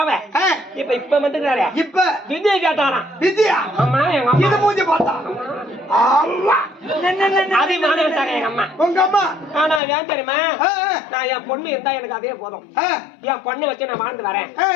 இப்ப வந்துக்கிறாரு. இப்ப விஜய் கேட்டாராம். விஜயா? ஆமா எங்க அம்மா இது மூஞ்சி பார்த்தா அதே மாட்டாங்க எங்க அம்மா. உங்க அம்மா ஆனா ஏன் தெரியுமா? நான் என் பொண்ணு இருந்தா எனக்கு அதே போதும். என் பொண்ணு வச்சு நான் வாழ்ந்து வரேன்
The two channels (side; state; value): right; drops out; at 9.8 s